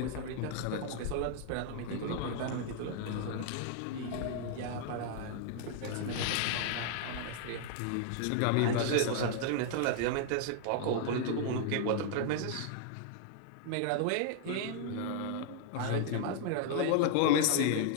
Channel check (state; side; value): different; both; correlation -0.01